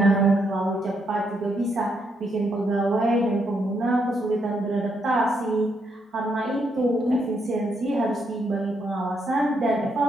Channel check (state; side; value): normal; both; correlation 0.77